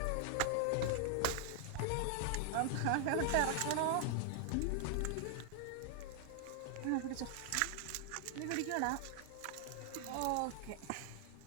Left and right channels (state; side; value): different; both; correlation 0.00